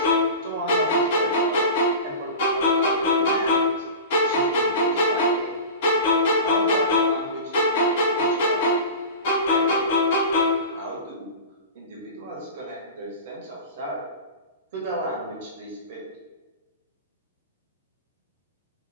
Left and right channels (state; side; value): inverted; both; correlation -0.31